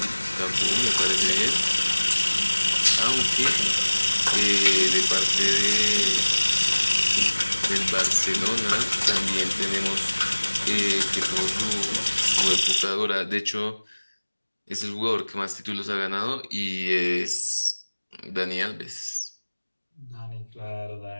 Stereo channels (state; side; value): inverted; both; correlation -1.00